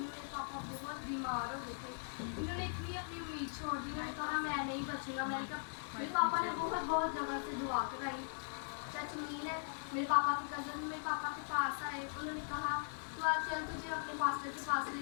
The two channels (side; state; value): right; silent; 51 dB below the other